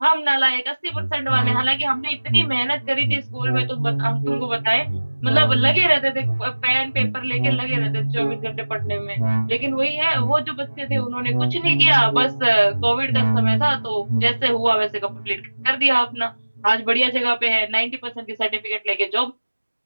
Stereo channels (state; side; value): inverted; both; correlation -1.00